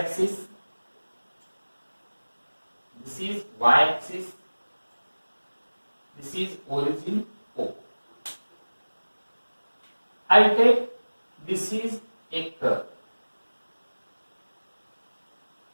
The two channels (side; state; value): both; inverted; correlation -1.00